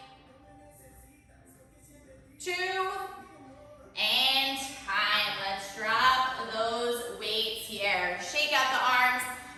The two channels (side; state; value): both; identical; correlation 1.00